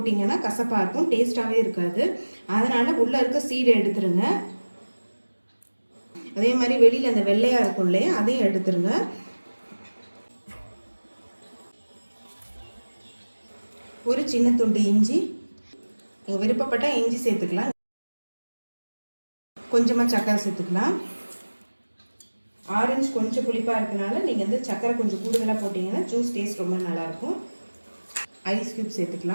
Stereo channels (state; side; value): inverted; both; correlation -1.00